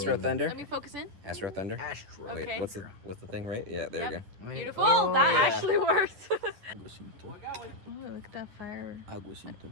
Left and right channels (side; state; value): left; late; 10 ms